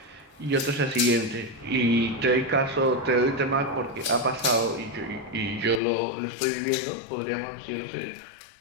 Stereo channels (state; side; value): drops out; right; at 5.8 s